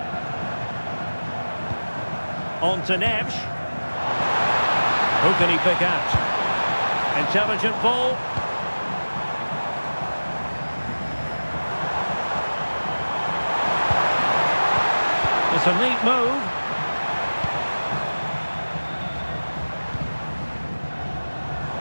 On to Neves. Who can he pick out? Intelligent ball. It's a neat move.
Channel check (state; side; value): inverted; both; correlation -1.00